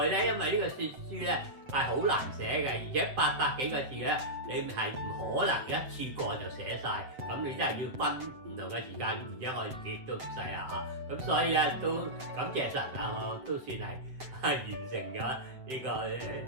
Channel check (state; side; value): late; left; 7.8 ms